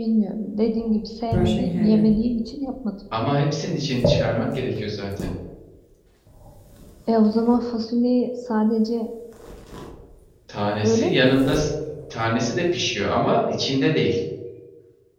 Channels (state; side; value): identical; both; correlation 1.00